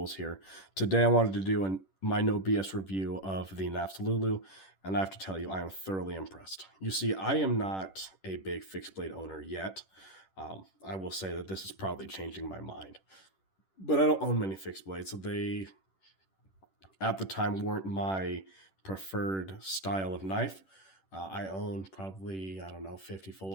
here. Today I wanted to do my no BS review of the Knafs LuLu, and I have to tell you, I am thoroughly impressed. You see, I am not a big fixed blade owner yet. I will say that this is probably changing my mind. But I don't own many fixed blades, so they, at the time, weren't my preferred style of knife. I own probably, I don't know, 50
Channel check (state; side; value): late; right; 10 ms